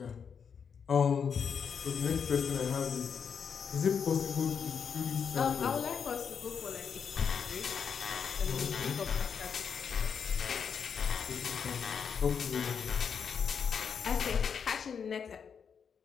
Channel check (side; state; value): right; quieter; 6.8 dB